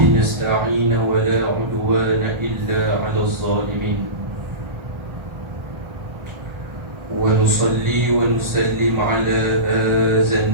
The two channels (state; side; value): late; left; 1.4 ms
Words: نستعين ولا عدوان إلا على الظالمين، ونصلي ونسلم على هذا